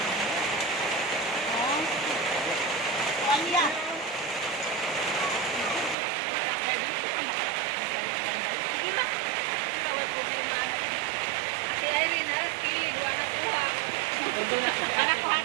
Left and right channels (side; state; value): left; drops out; at 6.0 s